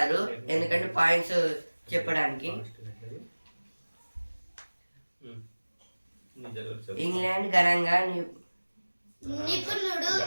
ఎందుకంటే పాయింట్స్ చెప్పడానికి. ఇంగ్లాండ్ ఘనంగా నిపుణుడు.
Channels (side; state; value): both; inverted; correlation -1.00